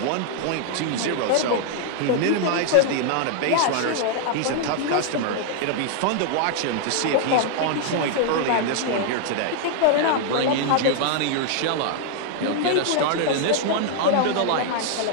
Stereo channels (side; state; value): both; different; correlation 0.00